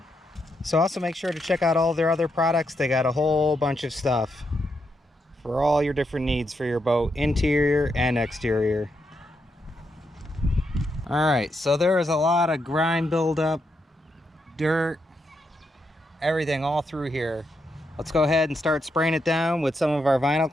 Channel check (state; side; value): normal; both; correlation 0.81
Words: So also make sure to check out all their other products. They got a whole bunch of stuff for all your different needs for your boat, interior and exterior. Alright, so there is a lot of grime buildup, dirt, everything all through here. Let's go ahead and start spraying it down with some of our vinyl